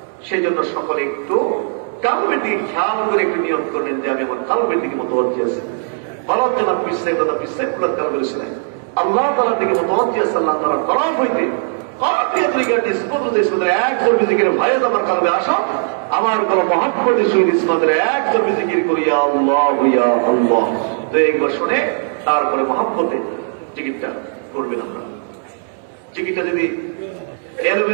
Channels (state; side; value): silent; left; 65 dB below the other